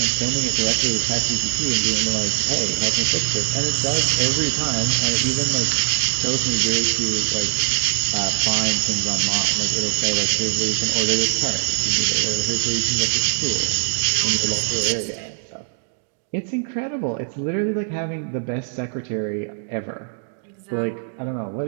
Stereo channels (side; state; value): left; silent; digital silence